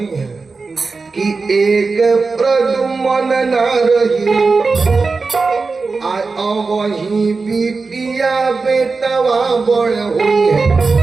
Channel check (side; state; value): left; quieter; 4.2 dB